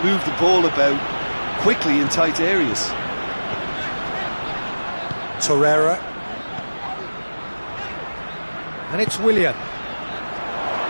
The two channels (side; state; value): both; inverted; correlation -1.00